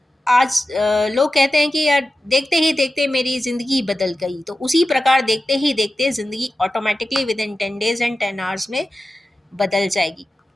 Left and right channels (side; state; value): both; normal; correlation 0.93